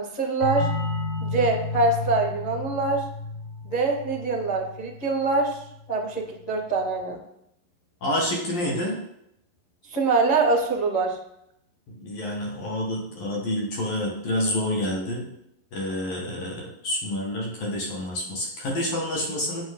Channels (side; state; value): right; late; 11 ms